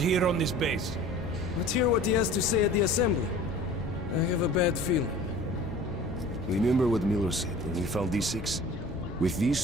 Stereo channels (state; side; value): normal; both; correlation 0.43